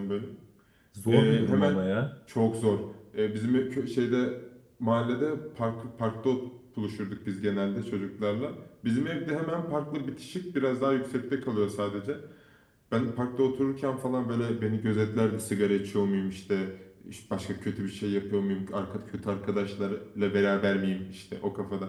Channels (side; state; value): both; identical; correlation 1.00